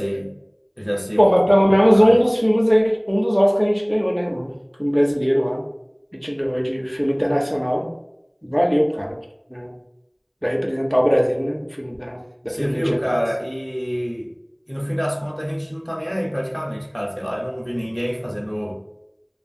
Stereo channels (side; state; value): both; identical; correlation 1.00